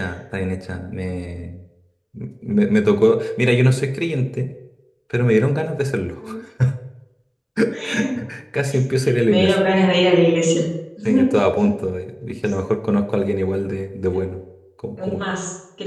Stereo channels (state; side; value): identical; both; correlation 1.00